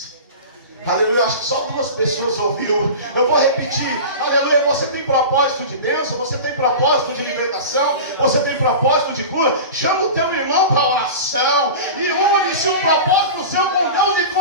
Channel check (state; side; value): inverted; both; correlation -0.31